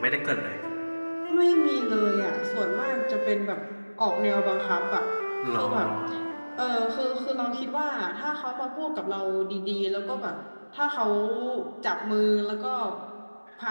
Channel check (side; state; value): both; inverted; correlation -1.00